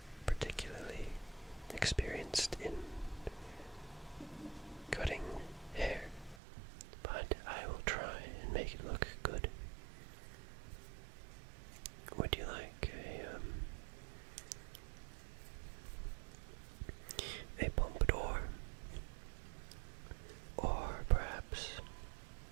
particularly experienced in cutting hair, but I will try and make it look good. Would you like a pompadour, or perhaps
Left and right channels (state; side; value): drops out; left; at 6.4 s